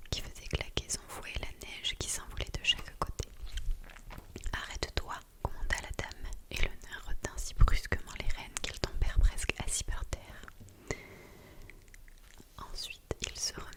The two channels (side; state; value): both; identical; correlation 1.00